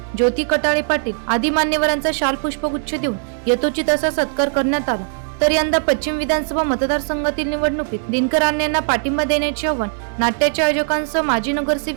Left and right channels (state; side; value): silent; left; 59 dB below the other